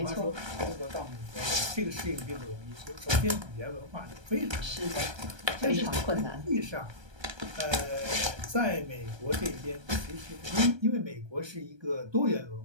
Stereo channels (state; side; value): late; left; 1.3 ms